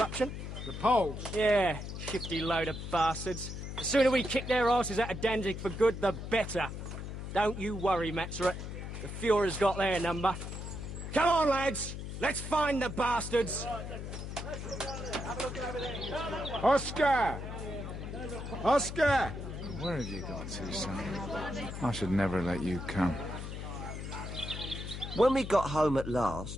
The Poles? Yeah, shifty load of bastards. The sooner we kick their asses out of Danzig for good, the better. Don't you worry, Maxrut. The Fuhrer's got their number. Come on, lads. Let's find the bastards. Oscar! Oscar! Where have you got to, son? I should never let you come. When we got home at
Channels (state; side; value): noise; left; hum, 7 dB below the sound